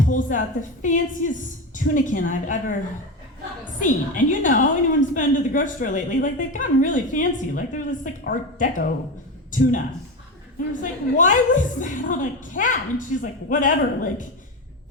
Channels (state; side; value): normal; both; correlation 0.20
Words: pulls out the fanciest tunican I've ever seen. And you know, anyone who's been to the grocery store lately, like they've gotten really fancy. Like they're this like Art Deco tuna. And I was like, why was that on a cat? And she's like, whatever, like